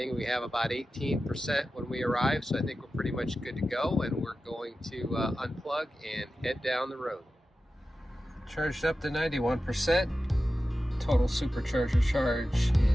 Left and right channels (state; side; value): normal; both; correlation 0.93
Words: we have about 18% when we arrive, so I think we're pretty much good to go, and we're going to unplug and head down the road. Charged up to 91%. Total Supercharger charge